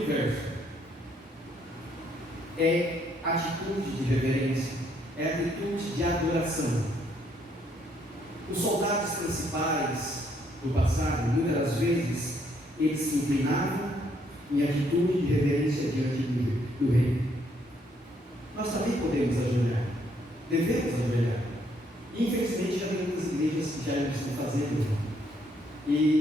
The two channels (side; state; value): both; normal; correlation 0.70